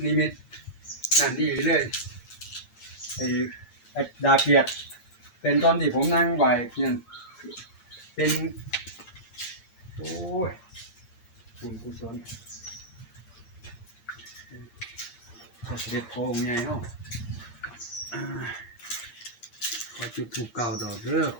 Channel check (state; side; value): late; right; 8.6 ms